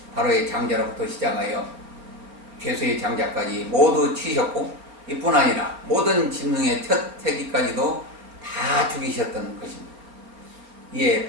바로의 장자로부터 시작하여 죄수의 장자까지 모두 치셨고 이뿐 아니라 모든 짐승의 첫 새끼까지도 다 죽이셨던 것입니다. 이에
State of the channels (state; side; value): late; left; 4.4 ms